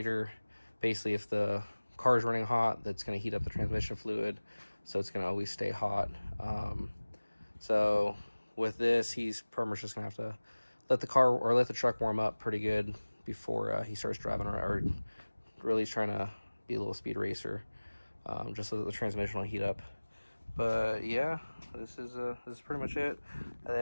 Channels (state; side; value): inverted; both; correlation -1.00